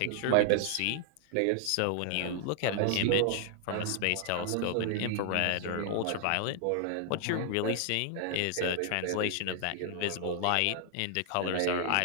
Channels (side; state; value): both; different; correlation 0.00